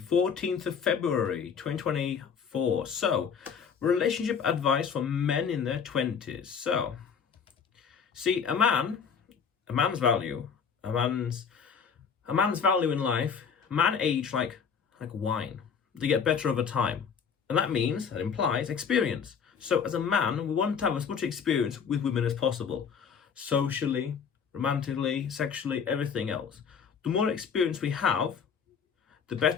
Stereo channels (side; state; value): right; quieter; 6.6 dB